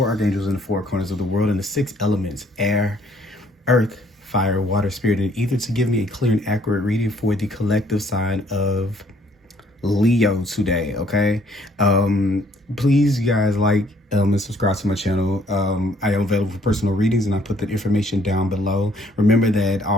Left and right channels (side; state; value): both; normal; correlation 0.63